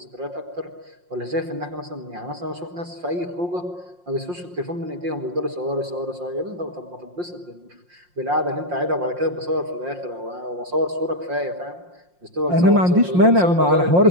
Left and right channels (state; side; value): late; left; 5.6 ms